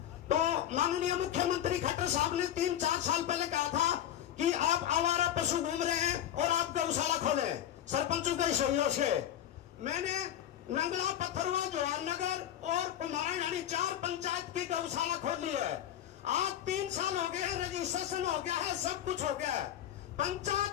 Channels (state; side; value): quieter; right; 11.1 dB